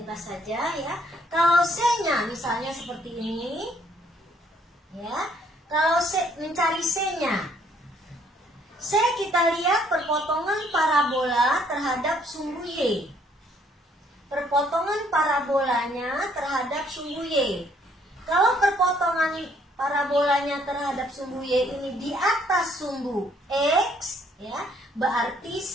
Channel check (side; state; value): both; normal; correlation 0.65